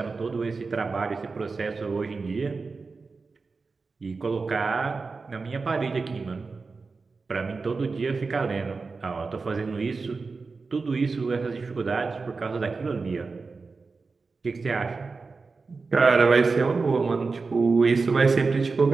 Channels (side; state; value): left; quieter; 4.3 dB